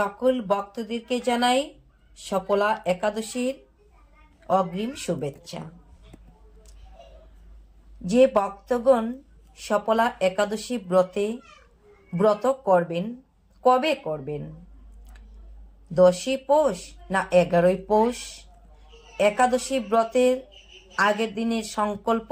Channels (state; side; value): identical; both; correlation 1.00